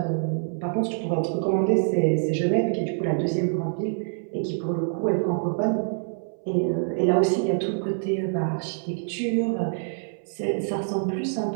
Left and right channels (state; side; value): silent; left; 61 dB below the other